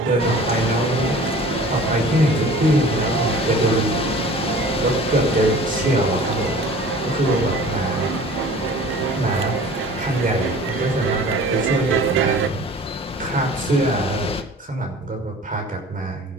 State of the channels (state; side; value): normal; both; correlation 0.45